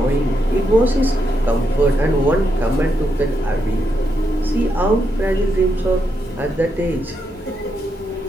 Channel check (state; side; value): normal; both; correlation 0.81